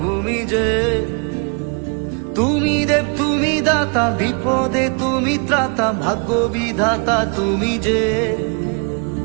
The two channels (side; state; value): left; quieter; 35.6 dB